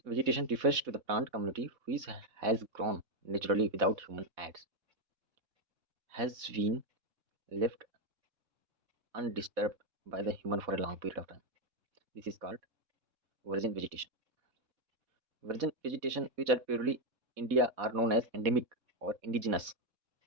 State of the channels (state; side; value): late; left; 4.1 ms